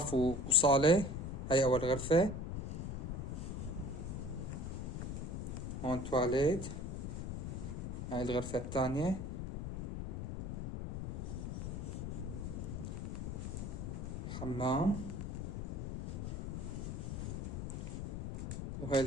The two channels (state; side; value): noise; left; rumble, 4 dB below the sound